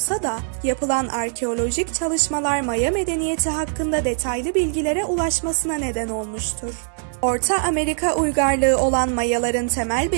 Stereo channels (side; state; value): left; silent; digital silence